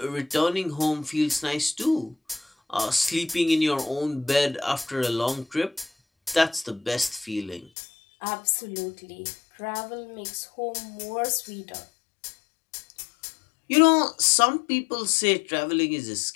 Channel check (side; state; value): right; drops out; at 7.7 s